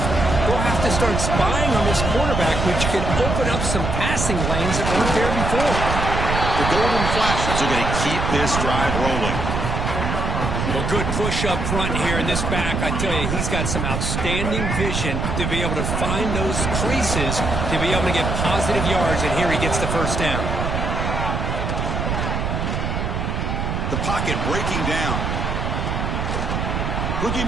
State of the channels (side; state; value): right; noise; rumble, 1 dB below the sound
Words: we'll have to start spying on this quarterback, which could open up some passing lanes that weren't there before. The Golden Flashes are going to keep this drive rolling. Well, good push up front here in this back. I tell you, he's got some outstanding vision to be able to find those creases, to be able to get positive yards, and here he gets the first down. The pocket breaking down. Looking